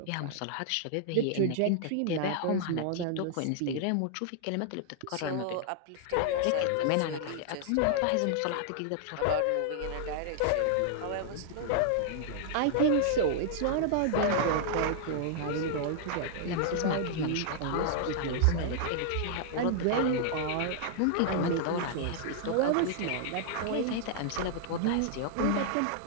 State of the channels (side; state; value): both; different; correlation -0.01